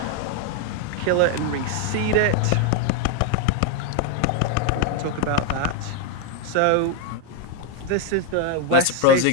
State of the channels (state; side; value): different; both; correlation 0.01